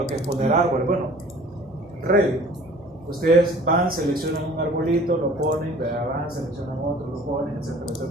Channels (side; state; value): both; normal; correlation 0.49